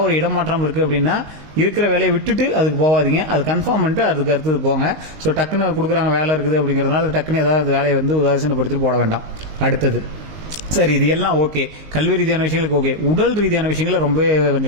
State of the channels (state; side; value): late; left; 19 ms